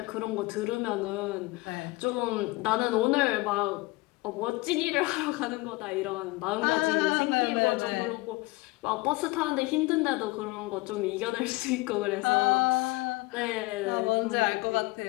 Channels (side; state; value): right; quieter; 22.9 dB